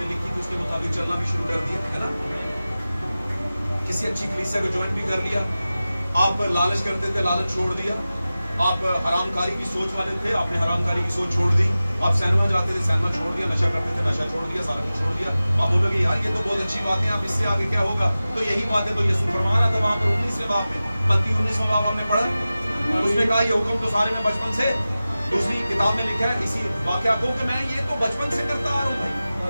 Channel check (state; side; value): inverted; both; correlation -0.96